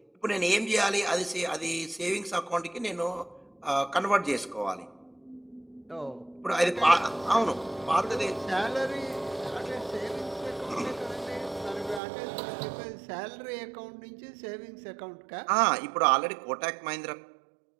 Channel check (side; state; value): left; drops out; at 12.0 s